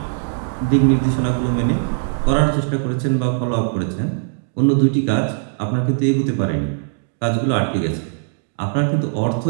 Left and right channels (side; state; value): left; silent; digital silence